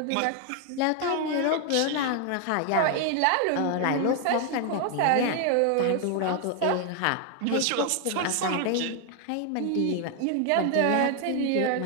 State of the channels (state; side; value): different; both; correlation 0.01